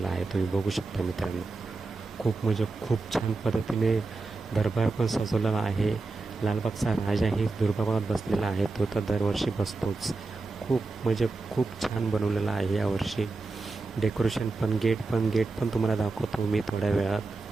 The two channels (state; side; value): quieter; left; 3.6 dB